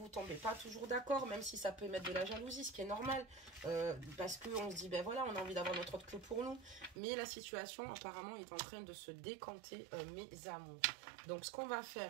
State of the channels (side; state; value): left; drops out; at 7.0 s